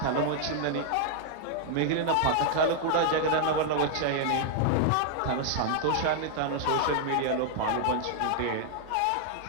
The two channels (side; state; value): both; different; correlation 0.00